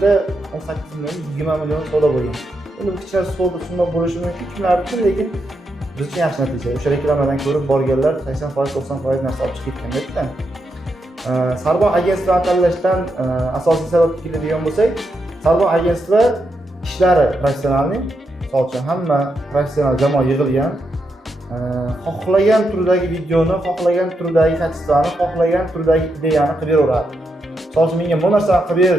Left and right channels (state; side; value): normal; both; correlation 0.83